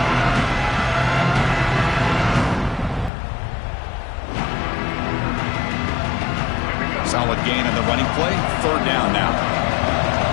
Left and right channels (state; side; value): drops out; right; at 3.1 s